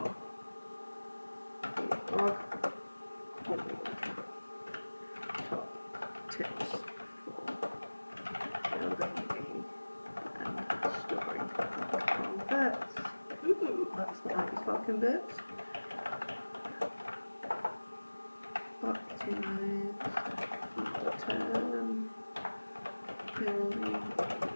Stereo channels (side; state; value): both; inverted; correlation -1.00